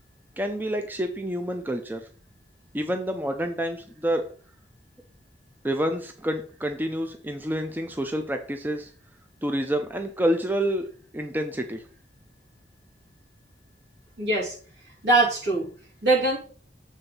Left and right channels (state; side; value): normal; both; correlation 0.61